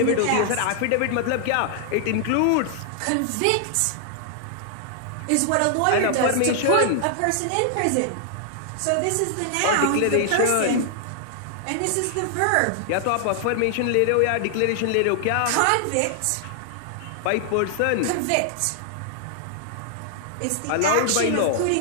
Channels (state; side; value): different; both; correlation -0.01